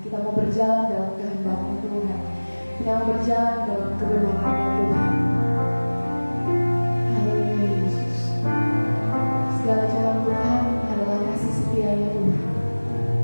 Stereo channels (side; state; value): both; inverted; correlation -1.00